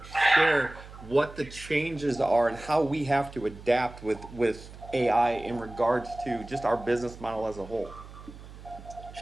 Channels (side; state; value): right; noise; hum, 16 dB below the sound